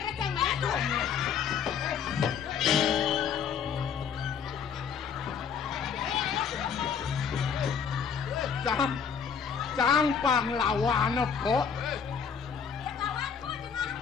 receng mana? Cang pahlawan kok.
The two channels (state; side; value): quieter; right; 7.0 dB